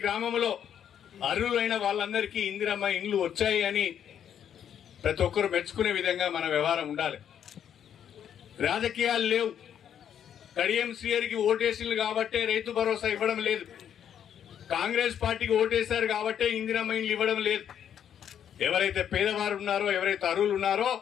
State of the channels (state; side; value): quieter; right; 9.2 dB